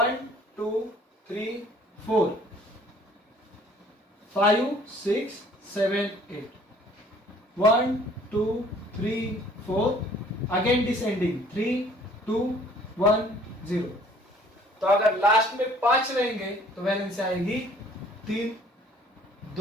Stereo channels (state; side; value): normal; both; correlation 0.56